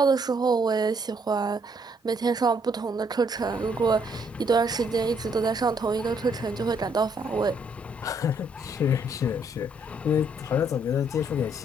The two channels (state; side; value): normal; both; correlation 0.69